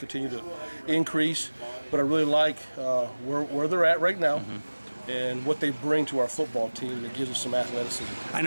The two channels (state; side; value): inverted; both; correlation -1.00